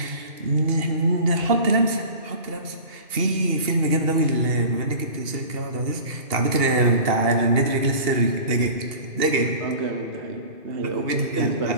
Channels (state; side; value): late; left; 2.8 ms